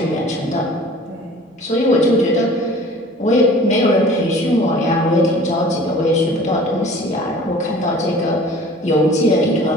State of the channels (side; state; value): both; normal; correlation 0.46